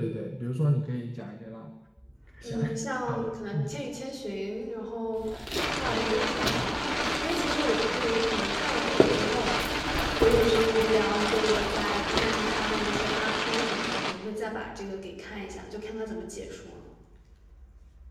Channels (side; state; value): both; identical; correlation 1.00